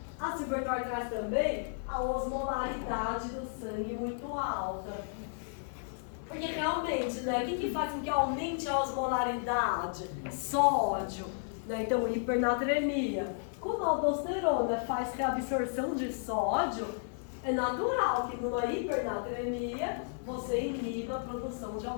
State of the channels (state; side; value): silent; right; 56 dB below the other